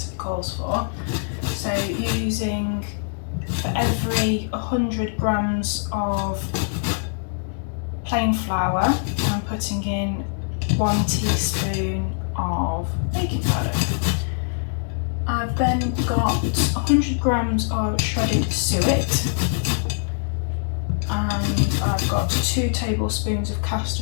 calls for. So using, for every 100 grams of plain flour, I'm putting in 1 teaspoon of baking powder. I've then got 100 grams of shredded suet, and I've got 2 tablespoons of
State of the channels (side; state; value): right; silent; 63 dB below the other